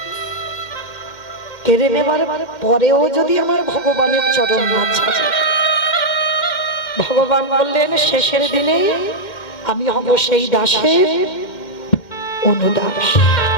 কেড়ে নেবার পরেও যদি আমার ভগবানের চরণ না ছাড়ে, ভগবান বললেন শেষের দিনে আমি হব সেই দাসের অনুদাস।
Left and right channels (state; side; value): late; right; 2.1 ms